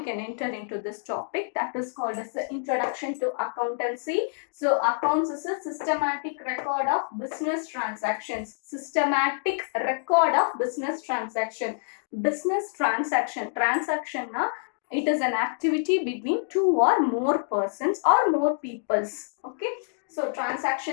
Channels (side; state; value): right; silent; digital silence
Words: can enter into this topic that is called as the Introduction to Accountancy. So accounts is a systematic record of business transactions. Systematic record of business transaction. Business transaction na it is an activity between two or more persons or more peoples. Okay, so